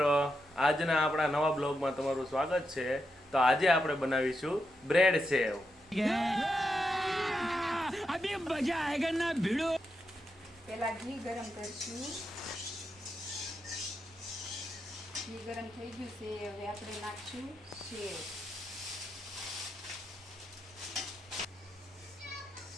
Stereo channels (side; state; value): both; normal; correlation 0.85